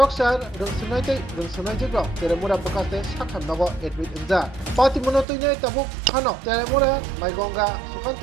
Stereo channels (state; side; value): drops out; left; at 5.2 s